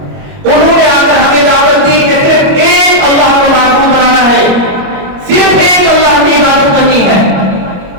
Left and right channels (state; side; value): late; left; 21 ms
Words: انہوں نے آ کر ہمیں دعوت دی کہ صرف ایک اللہ کو معبود بنانا ہے, صرف ایک اللہ کی عبادت کرنی ہے,